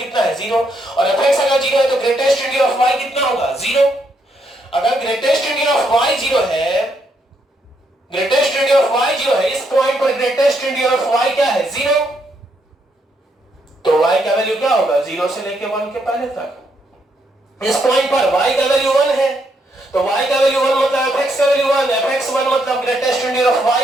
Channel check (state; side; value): normal; both; correlation 0.76